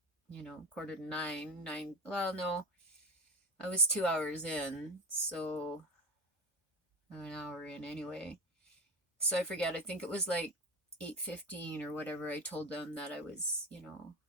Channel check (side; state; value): both; normal; correlation 0.25